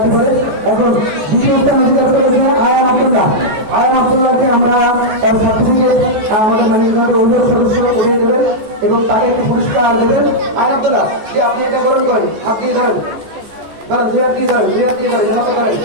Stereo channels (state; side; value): late; left; 14 ms